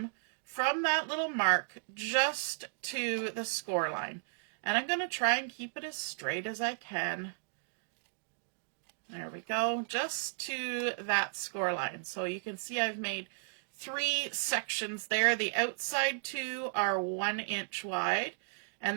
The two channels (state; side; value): silent; left; digital silence